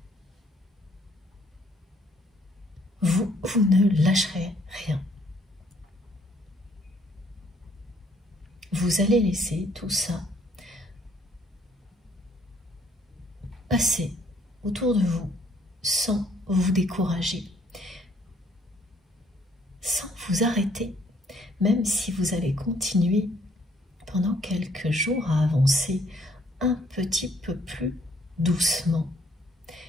Vous ne lâcherez rien. Vous allez laisser tout ça passer autour de vous sans vous décourager, sans vous arrêter, même si vous allez continuer pendant quelques jours à avancer un petit peu plus doucement.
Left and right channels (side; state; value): both; normal; correlation 0.65